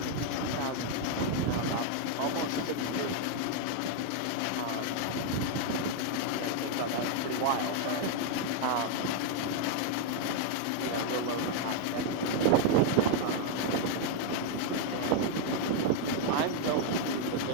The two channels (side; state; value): both; different; correlation 0.00